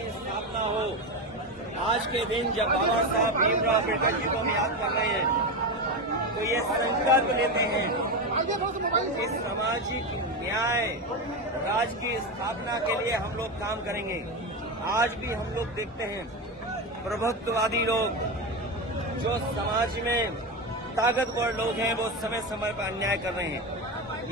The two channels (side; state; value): both; normal; correlation 0.16